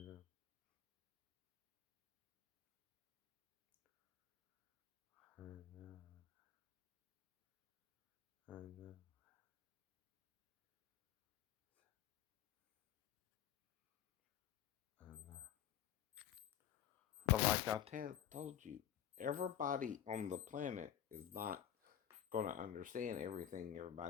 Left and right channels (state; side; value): quieter; right; 10.5 dB